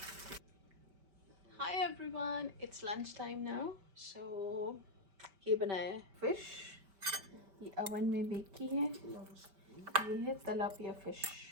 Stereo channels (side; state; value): left; late; 5.1 ms